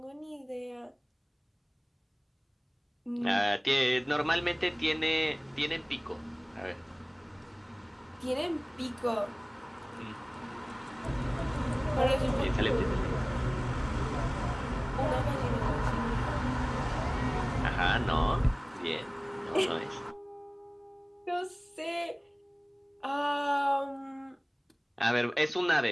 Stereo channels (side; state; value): both; identical; correlation 1.00